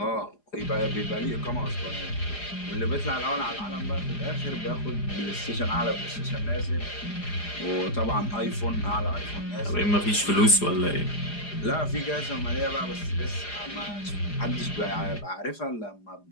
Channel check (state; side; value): late; right; 4.9 ms